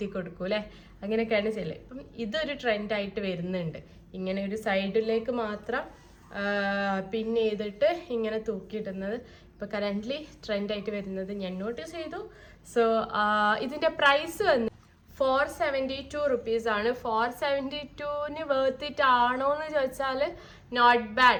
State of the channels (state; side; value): identical; both; correlation 1.00